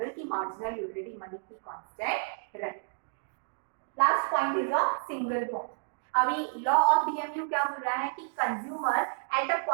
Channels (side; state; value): left; silent; digital silence